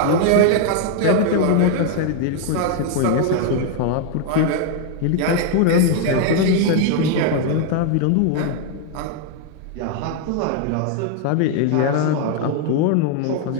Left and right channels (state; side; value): different; both; correlation 0.00